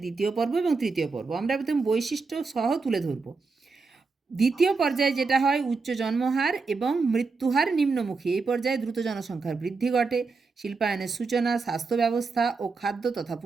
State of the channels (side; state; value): left; quieter; 4.3 dB